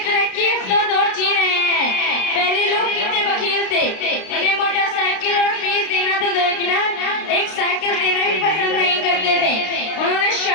ترقی یافتہ دور جی رہے ہیں۔ پہلے لوگ کتنے بخیل تھے، انہیں موٹر سائیکل اور فیس دینا تو درکنار ایک سائیکل دینا بھی پسند نہیں کرتے تھے۔ انہوں نے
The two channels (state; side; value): late; right; 32 ms